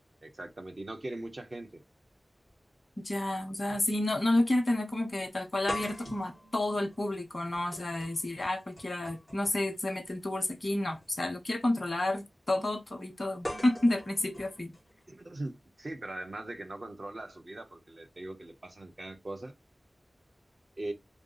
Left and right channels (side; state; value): both; normal; correlation 0.96